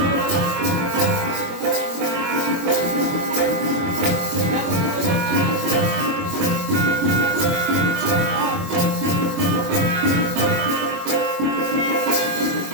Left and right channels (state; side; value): late; left; 22 ms